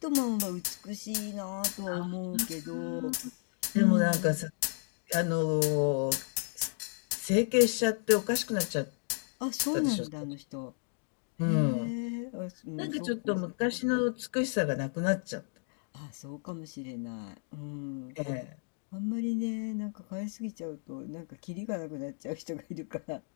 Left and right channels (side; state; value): right; silent; 56 dB below the other